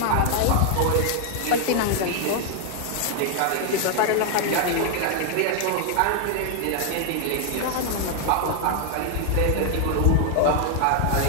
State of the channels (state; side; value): different; both; correlation 0.00